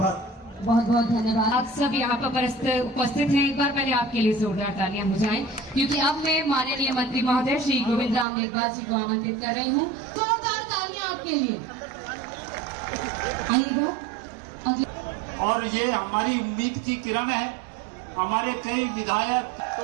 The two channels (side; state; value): left; drops out; at 8.2 s